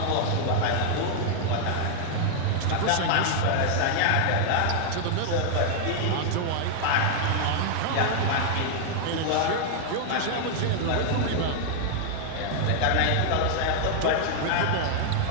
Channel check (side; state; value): both; different; correlation 0.00